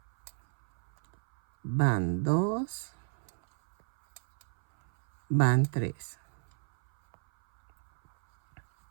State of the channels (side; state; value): left; silent; 58 dB below the other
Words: van 2, van 3.